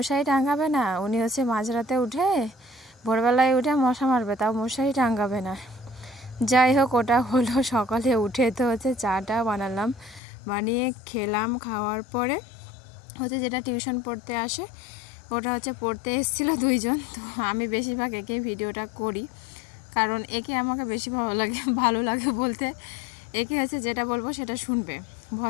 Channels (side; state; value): right; drops out; at 10.2 s